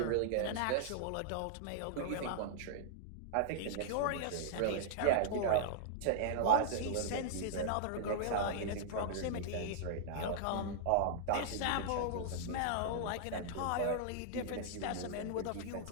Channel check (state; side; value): different; both; correlation -0.01